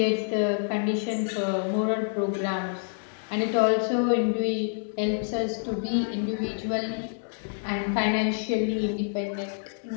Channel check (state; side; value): silent; right; digital silence